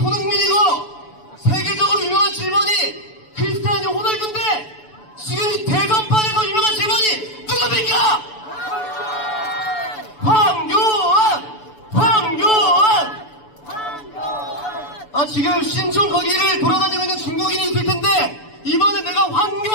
세계적으로 유명한 7번이 크리스티아노 호날두인데 지금 이 대선판에서 유명한 7번이 누굽니까? 지금 신촌 거기를 돌아다니고 있는 중국인이 있을 텐데 이번에 내가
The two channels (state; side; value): late; right; 6.9 ms